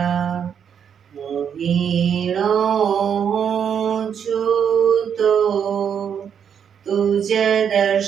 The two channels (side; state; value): left; quieter; 7.9 dB